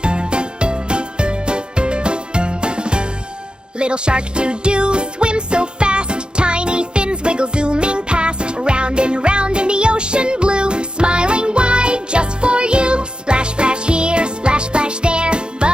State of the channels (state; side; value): late; left; 0.050 ms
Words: Little shark doo-doo swims so fast, tiny fins wiggle zooming past, round and round in the ocean blue, smiling wide just for you. Splash, splash here, splash, splash there,